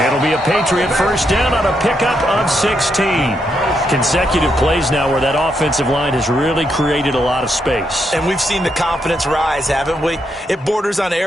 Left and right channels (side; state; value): both; normal; correlation 0.79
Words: It'll be a Patriot first down on a pickup of 16. Consecutive plays now where that offensive line has really created a lot of space. And we've seen the confidence rise, haven't we? It borders on